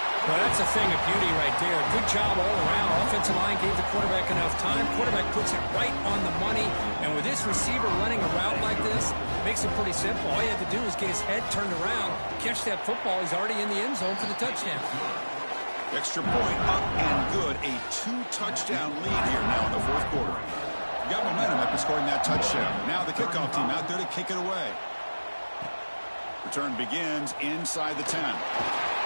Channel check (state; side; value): inverted; both; correlation -1.00